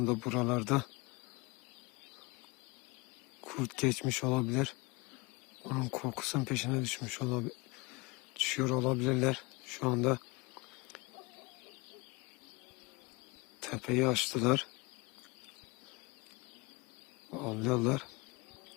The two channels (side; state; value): right; quieter; 25.6 dB